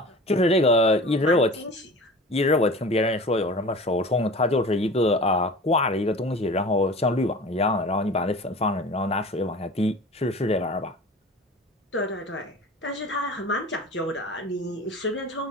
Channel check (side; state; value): both; normal; correlation 0.38